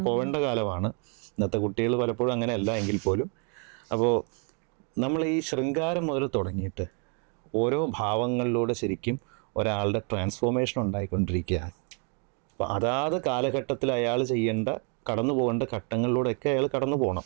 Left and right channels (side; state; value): left; quieter; 39.3 dB